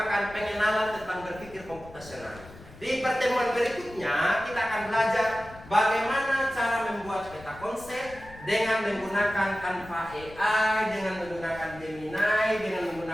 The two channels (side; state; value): left; noise; rumble, 19 dB below the sound